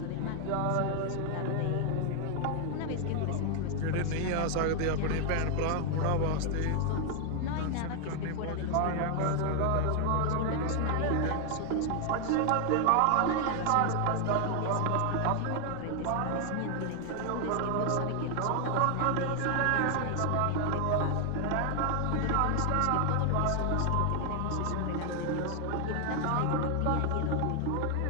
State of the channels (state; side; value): different; both; correlation 0.00